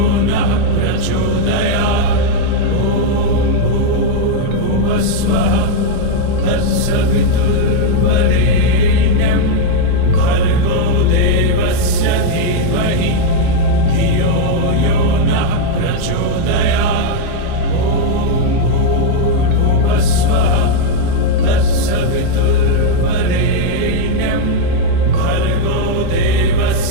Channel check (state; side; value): different; both; correlation 0.00